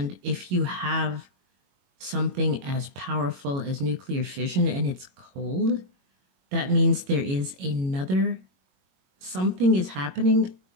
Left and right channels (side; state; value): left; late; 22 ms